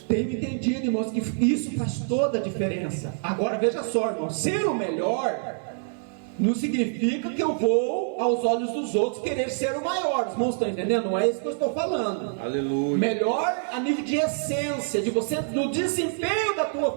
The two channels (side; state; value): left; silent; digital silence